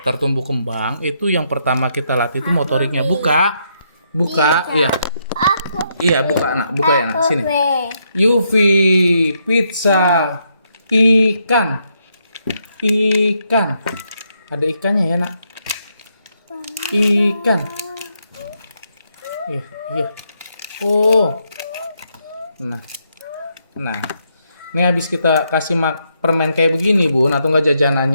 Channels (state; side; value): inverted; both; correlation -0.77